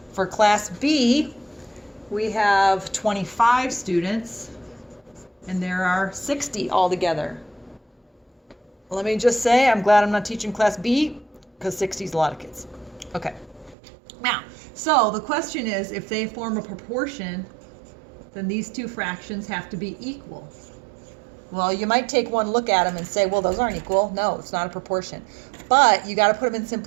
For class B, we have 25 students, and there are 60 altogether. Let me just say, I'm glad I'm not teaching class B, because 60 is a lot of kids. Okay. Now, so the question is, if they form a proportion, then these 2 fractions have to be equal. Well, you might take one look at them and say, well, those aren't equal. No, it's not a proportion. But you got to put them in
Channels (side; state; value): left; drops out; at 13.8 s